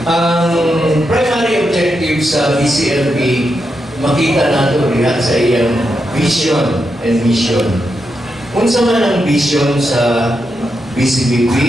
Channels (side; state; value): both; normal; correlation 0.85